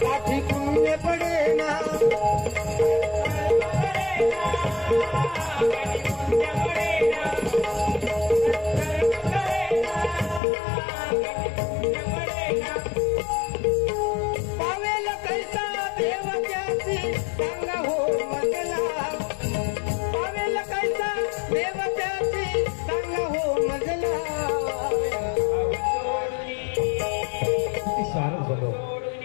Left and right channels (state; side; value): drops out; right; at 10.4 s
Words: गाठी पुण्य पडेना. पावेल कैसा देव त्याची सांगा हो मजला. पावेल कैसा देव त्याची सांगा हो मजला. शारद बोलो